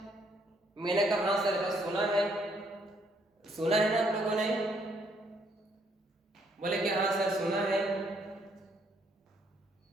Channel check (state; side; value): normal; both; correlation 0.69